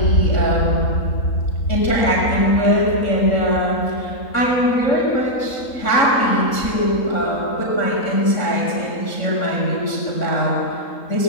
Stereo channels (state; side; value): late; right; 3.8 ms